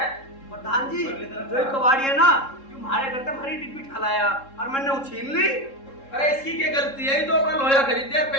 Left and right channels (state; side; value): late; right; 3.7 ms